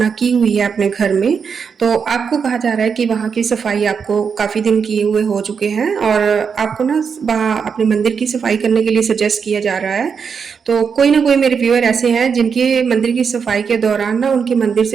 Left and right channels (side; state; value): left; quieter; 6.2 dB